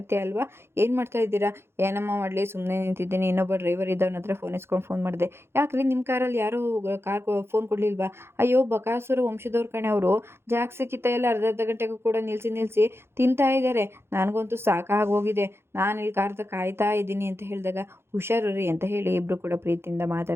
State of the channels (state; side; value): late; left; 0.12 ms